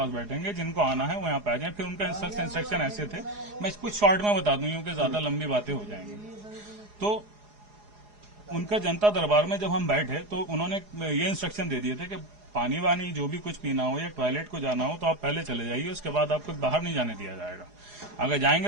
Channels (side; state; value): left; late; 4.8 ms